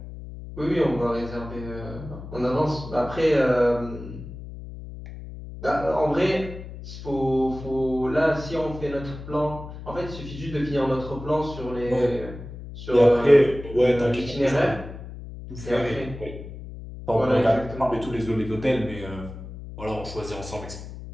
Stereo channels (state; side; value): noise; left; hum, 12 dB below the sound